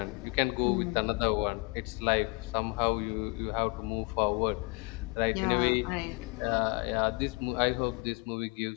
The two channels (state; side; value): quieter; right; 28.9 dB